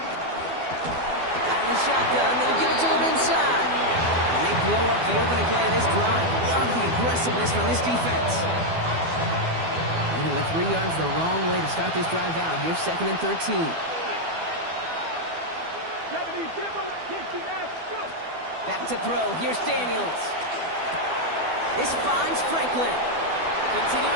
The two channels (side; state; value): left; late; 12 ms